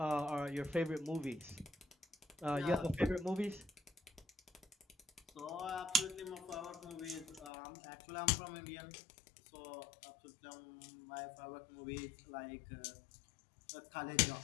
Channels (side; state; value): right; drops out; at 7.5 s